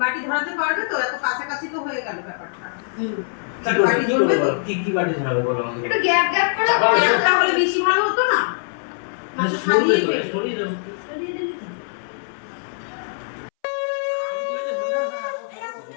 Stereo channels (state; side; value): silent; right; 62 dB below the other